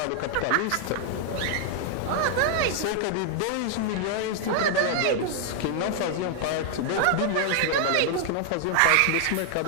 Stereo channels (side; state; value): both; different; correlation 0.00